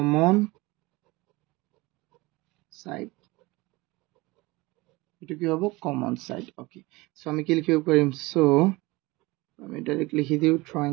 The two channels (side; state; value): left; quieter; 22.4 dB